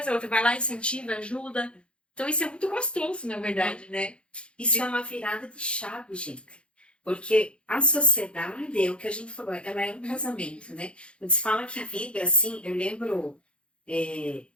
a outra vai lá, incentiva, ajuda. Então isso é muito gostoso, na verdade, né? Isso é uma virada de chave, gente. Porque a sociedade, é o que a gente falou, ela é um casamento, né? Quando se fala que vibra assim, eu lembro,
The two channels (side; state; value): right; late; 0.058 ms